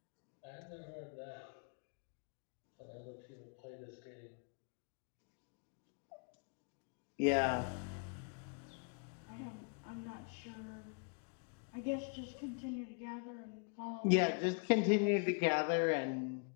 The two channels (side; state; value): right; quieter; 39.0 dB